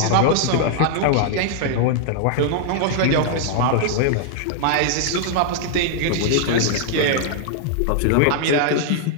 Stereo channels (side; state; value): both; different; correlation -0.01